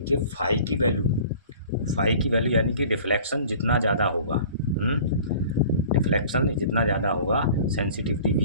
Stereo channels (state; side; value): inverted; both; correlation -0.45